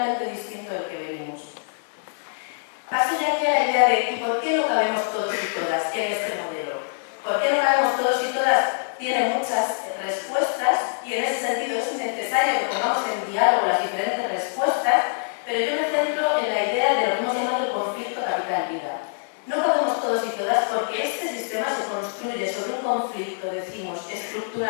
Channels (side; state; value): right; silent; digital silence